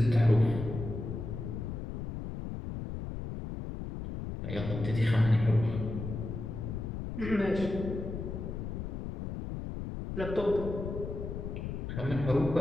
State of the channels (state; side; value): noise; left; rumble, 6 dB below the sound